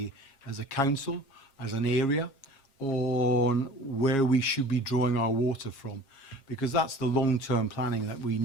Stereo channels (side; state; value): right; late; 7.4 ms